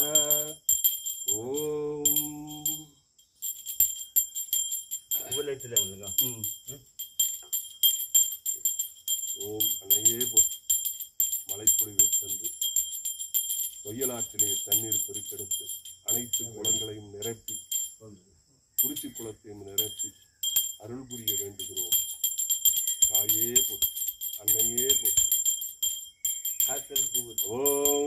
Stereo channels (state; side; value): identical; both; correlation 1.00